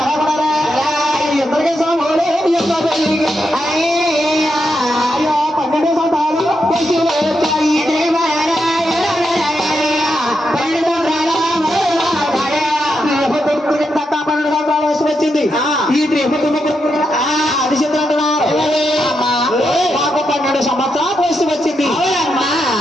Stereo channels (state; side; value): normal; both; correlation 0.84